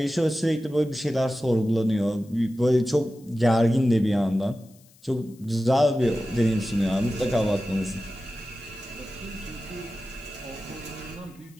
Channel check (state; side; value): noise; left; hiss, 28 dB below the sound